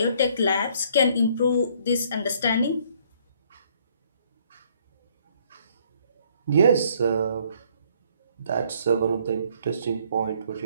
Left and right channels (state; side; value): inverted; both; correlation -0.63